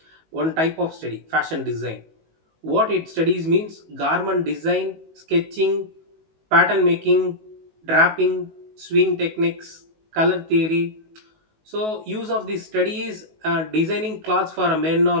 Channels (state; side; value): late; left; 19 ms